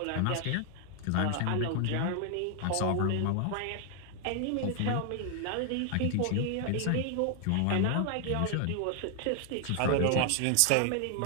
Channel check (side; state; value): both; different; correlation 0.00